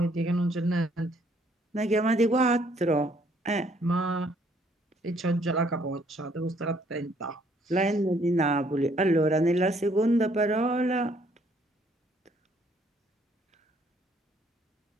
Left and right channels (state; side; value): normal; both; correlation 0.65